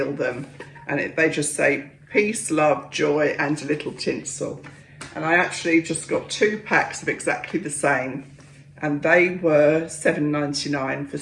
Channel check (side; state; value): both; identical; correlation 1.00